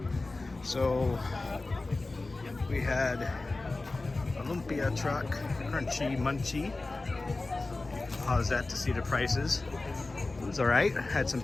So we had a lumpia truck, crunchy munchy. Paused that to see the prices. It was alright. Had some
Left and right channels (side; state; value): right; quieter; 3.3 dB